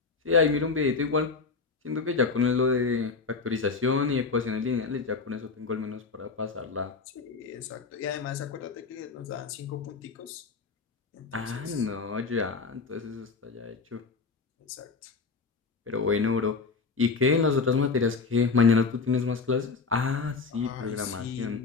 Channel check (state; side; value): quieter; right; 4.6 dB